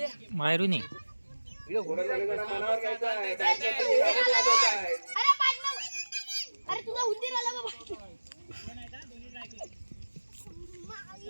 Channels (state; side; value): inverted; both; correlation -1.00